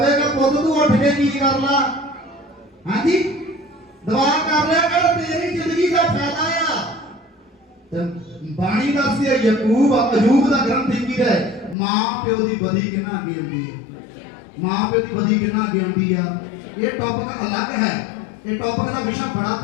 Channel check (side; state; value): right; drops out; at 11.8 s